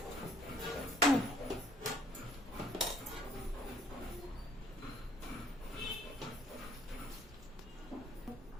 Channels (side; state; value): both; normal; correlation 0.59